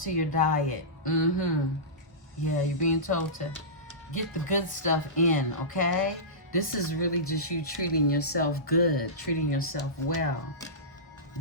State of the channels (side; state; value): both; normal; correlation -0.19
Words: to your diet. Yeah, you're being told to get the good stuff in, okay? This is really just you treating yourself good, treating yourself well,